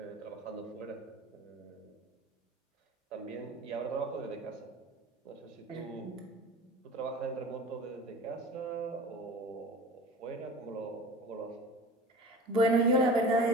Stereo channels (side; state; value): both; normal; correlation 0.38